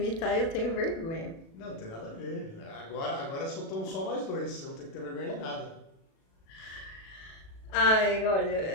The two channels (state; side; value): late; right; 37 ms